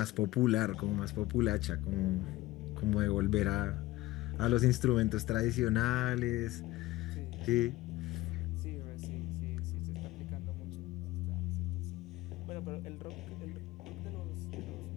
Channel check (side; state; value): right; quieter; 17.7 dB